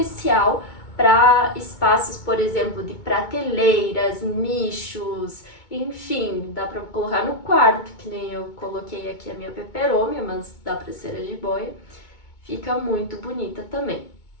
para espaços, por exemplo, de prateleiras, nichos, enfim, dá para colocar no quarto, que nem eu coloquei aqui a minha peperômia, mas dá para ser a jiboia. Fica muito bonita também.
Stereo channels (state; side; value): late; right; 2.2 ms